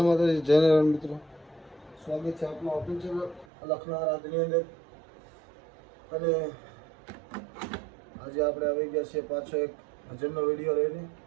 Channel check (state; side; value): drops out; left; at 3.5 s